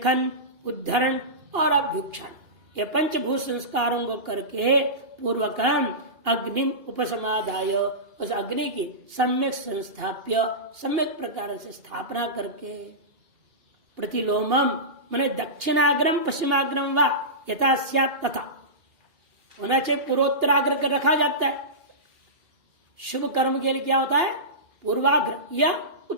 उद्धरण और अभ्युक्षण, ये 5 भूसंस्कारों को करके पूर्वकम अग्नि उपसमाधाय, उस अग्नि की सम्यक संस्थाप्य, सम्यक प्रकार से स्थापना करके, प्रतिलोमम माने दक्षिणाग्रम पश्चिमाग्रम व यथा स्यात् तथा, होना चाहिए पूर्वोत्तराग्र कर रखा जाता है। शुभ कर्म के लिए क्या होता है? पूर्वाग्र या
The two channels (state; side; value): late; left; 2.8 ms